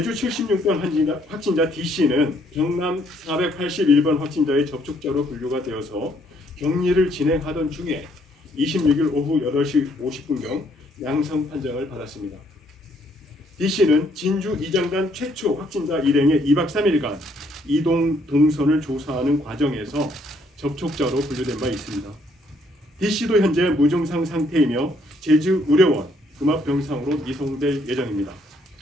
76번 확진자 D씨는 경남 481번 확진자의 접촉자로 분류가 되어서 격리를 진행하던 중에 26일 오후 8시 50분경 양성 판정을 받았습니다. D씨는 진주 이장단 최초 확진자 일행의 2박 3일간 이동 동선을 조사하는 과정에서 접촉자로 분류된 바 있습니다. D씨도 현재 무증상 상태이며 제주의료원 음압병상으로 이송될 예정입니다.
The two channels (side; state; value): both; normal; correlation 0.68